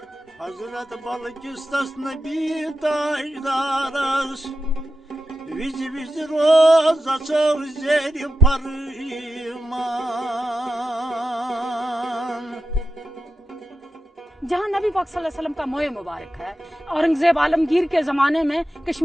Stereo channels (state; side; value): normal; both; correlation 0.90